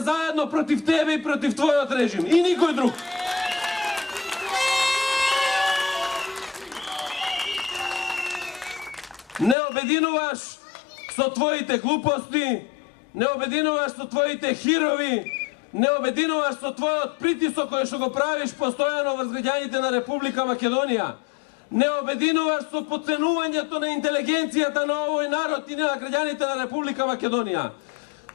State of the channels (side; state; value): right; drops out; at 9.6 s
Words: против тебе и против твојот режим. И никој друг. Не обединуваш со твоите глупости, не обединуваш со твоите хирови, не обединуваш со твојот притисок кој што го правиш постојано врз граѓаните на Република Македонија. Не обединуваш со поценувањето на интелигенцијата на овој народ и на граѓаните на Република Македонија.